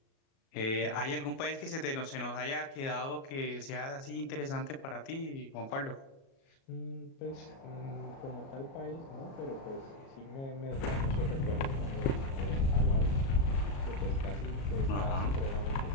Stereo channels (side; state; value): right; late; 37 ms